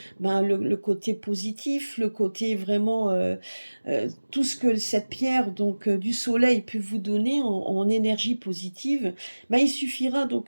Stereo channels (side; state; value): both; inverted; correlation -1.00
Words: le côté positif, le côté vraiment tout ce que cette pierre du soleil peut vous donner en énergie positive. Il suffira donc